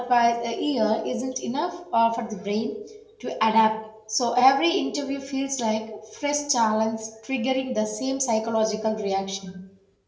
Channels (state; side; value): identical; both; correlation 1.00